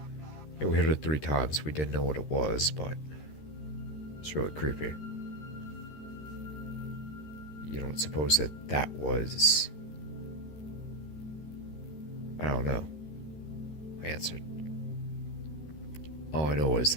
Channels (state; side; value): late; right; 13 ms